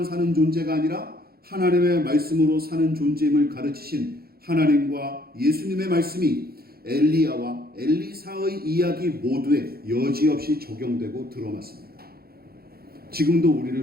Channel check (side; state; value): left; late; 0.44 ms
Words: 사는 존재가 아니라 하나님의 말씀으로 사는 존재임을 가르치신 하나님과 예수님의 말씀이 엘리야와 엘리사의 이야기 모두에 여지없이 적용되고 들어맞습니다. 지금도